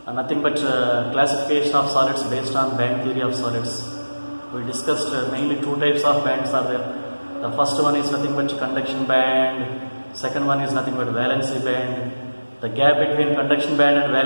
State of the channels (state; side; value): inverted; both; correlation -1.00